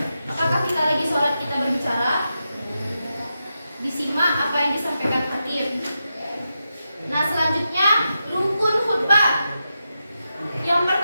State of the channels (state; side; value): inverted; both; correlation -0.88